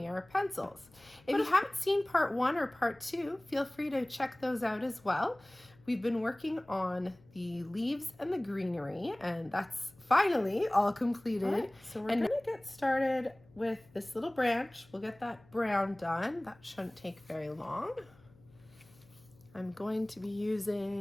Pencils. If you haven't seen part 1 or part 2, feel free to check those out as well. We've been working on the leaves and the greenery, and that's finally all completed. All right, so we're gonna get started with this little branch. We'll get that brown done. That shouldn't take very long. I'm going to be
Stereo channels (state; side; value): noise; left; hum, 27 dB below the sound